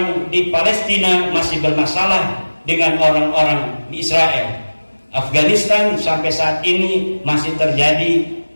di Palestina masih bermasalah dengan orang-orang di Israel. Afghanistan sampai saat ini masih terjadi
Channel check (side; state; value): both; inverted; correlation -1.00